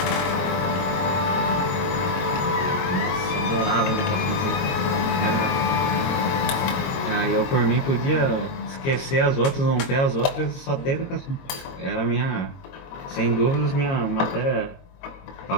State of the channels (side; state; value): right; late; 22 ms